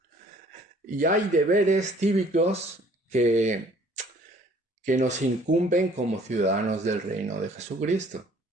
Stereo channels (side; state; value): both; normal; correlation 0.57